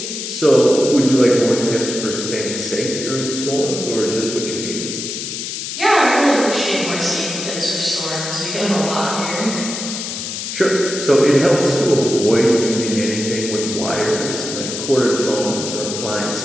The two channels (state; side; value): noise; left; hiss, 6 dB below the sound